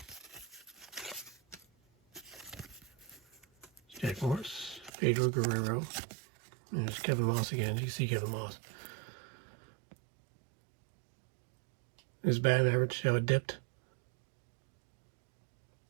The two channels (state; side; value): drops out; left; at 4.9 s